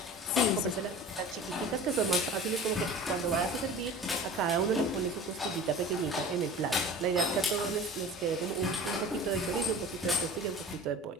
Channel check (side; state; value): both; normal; correlation 0.39